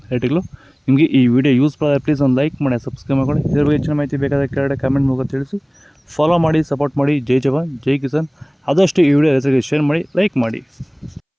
ರೇಟ್ಗಳು. ನಿಮಗೆ ಈ ವಿಡಿಯೋ ಯೂಸ್ ಮಾಡಿದ್ರೆ ಪ್ಲೀಸ್ ಒಂದು ಲೈಕ್ ಮಾಡಿ, ಸಬ್ಸ್ಕ್ರೈಬ್ ಮಾಡಿ. ಇದ್ರ ಬಗ್ಗೆ ಹೆಚ್ಚಿನ ಮಾಹಿತಿ ಬೇಕಾದರೆ ಕೆಳಗಡೆ ಕಮೆಂಟ್ ಮೂಲಕ ತಿಳಿಸಿ. ಫಾಲೋ ಮಾಡಿ, ಸಪೋರ್ಟ್ ಮಾಡಿ. ಜೈ ಜವಾನ್, ಜೈ ಕಿಸಾನ್. ಆದಷ್ಟು ಈ ವಿಡಿಯೋ ರೈತರಿಗೆ ಶೇರ್ ಮಾಡಿ, ಲೈಕ್ ಮಾಡಿ.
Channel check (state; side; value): identical; both; correlation 1.00